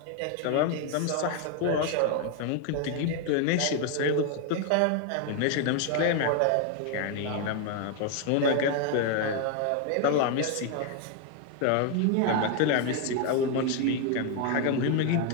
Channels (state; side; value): different; both; correlation 0.01